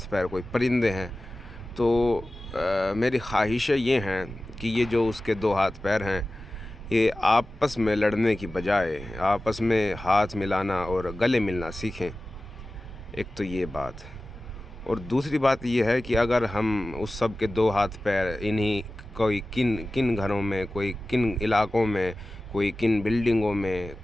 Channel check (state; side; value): normal; both; correlation 0.96